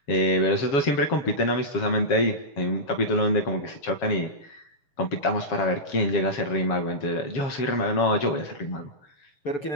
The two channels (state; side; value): late; right; 7.2 ms